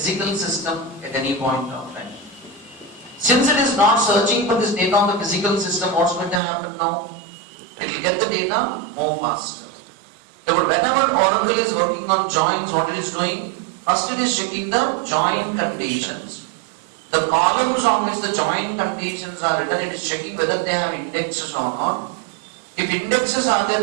system at any point of time. Since it is not searching for this data on the physical system, what's going to happen now? It will get the data more faster. But whenever Oracle is working on joins, what it is doing? First it is checking the join conditions. The columns on which the join conditions are written, it is checking whether they have indexes or not. If indexes are there,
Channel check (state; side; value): drops out; left; at 6.4 s